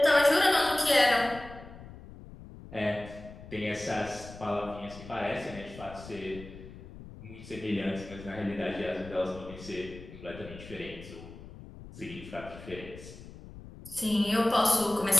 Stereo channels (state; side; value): noise; left; rumble, 15 dB below the sound